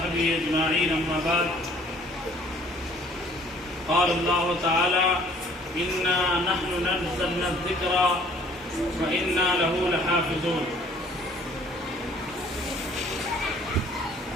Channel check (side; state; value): both; normal; correlation 0.56